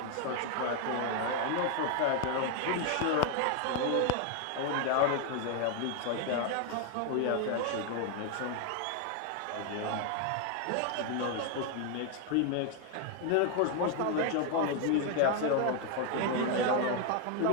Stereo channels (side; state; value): both; different; correlation 0.01